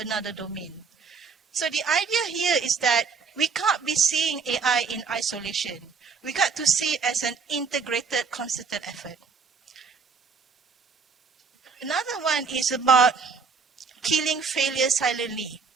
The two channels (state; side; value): quieter; left; 5.3 dB